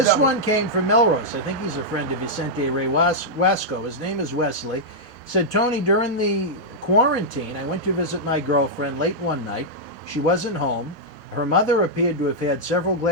devil. one came from Melrose. I think he's a friend of Vicente Ray Wasco. His name is Wesley. He said, Tony, during the quarantine, I went to visit my girlfriend late one night. She wasn't home. Her mother appeared to have had several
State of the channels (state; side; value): normal; both; correlation -0.06